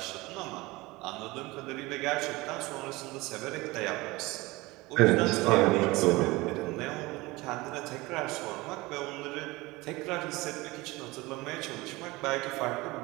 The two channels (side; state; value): left; quieter; 21.5 dB